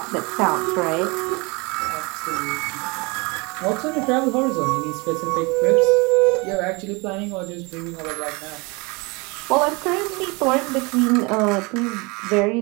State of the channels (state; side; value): quieter; left; 27.6 dB